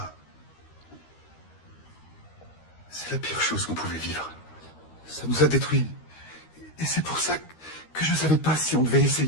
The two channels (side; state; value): right; late; 13 ms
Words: c'est la pire chose qu'on pouvait vivre. Ça nous a détruits. Et c'est pour ça que je ne savais pas si on devait